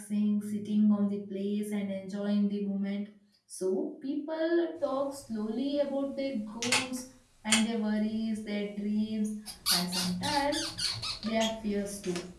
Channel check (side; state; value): both; identical; correlation 1.00